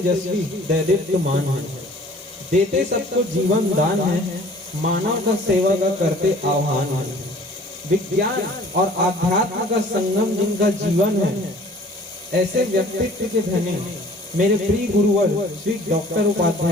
दैदीप्यमान है, देते सबको जीवन दान है, मानव का सेवा का करते आह्वान है। विज्ञान और आध्यात्म का संगम जिनका जीवन है, ऐसे व्यक्तित्व के धनी मेरे प्रिय गुरुवर श्री डॉक्टर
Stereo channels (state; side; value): normal; both; correlation 0.51